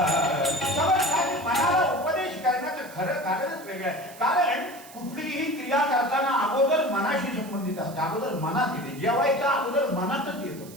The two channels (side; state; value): right; noise; hiss, 19 dB below the sound